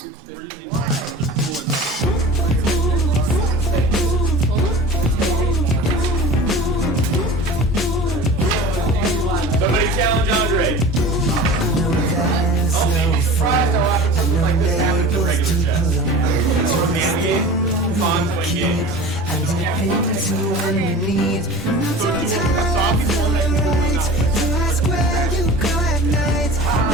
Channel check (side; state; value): both; normal; correlation 0.38